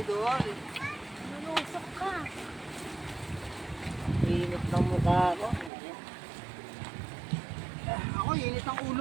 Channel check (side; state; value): left; drops out; at 5.7 s